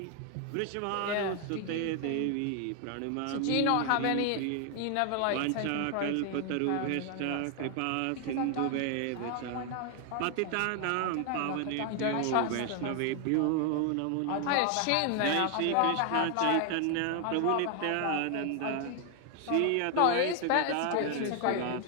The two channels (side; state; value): both; different; correlation 0.00